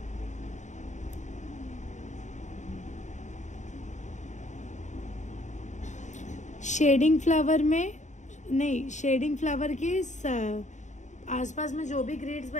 शेडिंग फ्लावर के आसपास में जो भी ग्रिड्स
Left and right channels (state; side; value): late; right; 0.35 ms